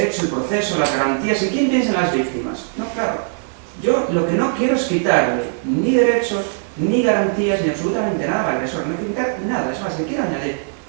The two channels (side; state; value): left; silent; 66 dB below the other